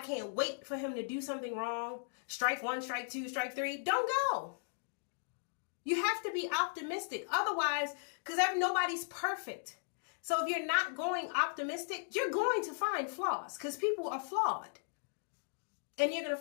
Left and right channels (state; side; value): silent; right; digital silence